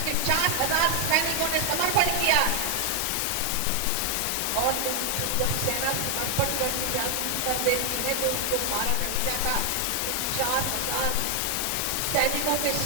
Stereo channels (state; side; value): different; both; correlation 0.00